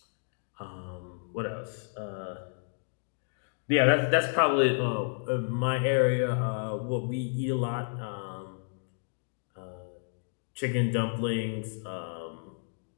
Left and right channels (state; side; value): silent; right; digital silence